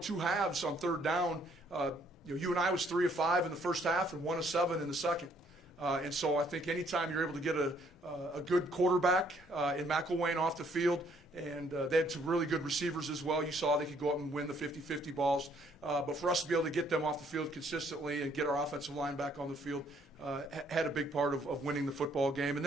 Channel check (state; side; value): normal; both; correlation 0.65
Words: 2 halves on third down. You and I was 3 of 5 in the first half and 1 of 7 in the second. And so I think anytime you're able to get a good quarterback in McElwain off the field, and they had some really good receivers as well. You saw they could go up and win the 50-50 balls. But for us to be able to get them off the field consistently and get our offensive line back on the field had a big part of winning the football game. And